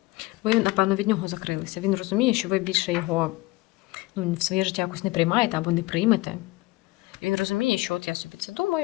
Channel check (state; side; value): quieter; right; 20.4 dB